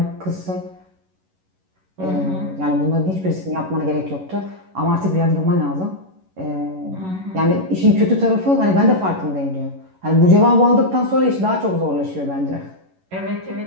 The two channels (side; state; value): left; late; 11 ms